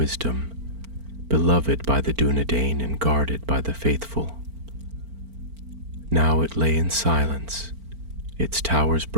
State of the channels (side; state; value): left; late; 4.4 ms